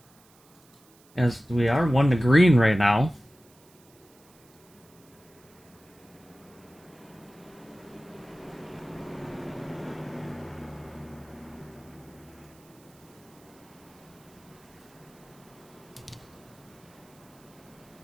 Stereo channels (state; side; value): noise; right; hiss, 28 dB below the sound